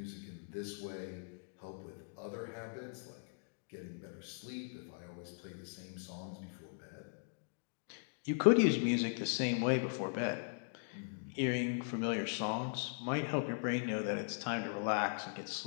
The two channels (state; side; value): silent; right; digital silence